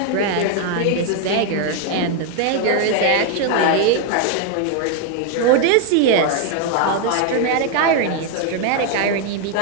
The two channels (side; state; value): both; different; correlation 0.00